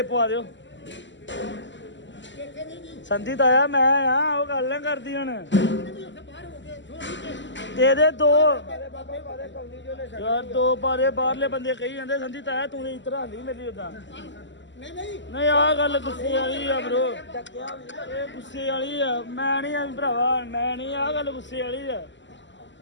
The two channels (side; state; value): right; late; 0.54 ms